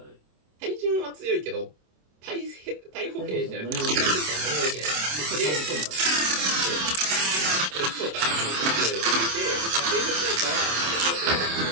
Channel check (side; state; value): left; late; 27 ms